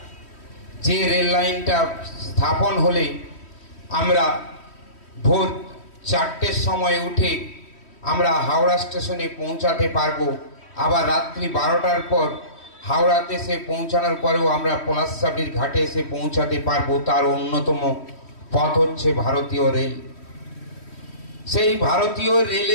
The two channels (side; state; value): right; late; 3.1 ms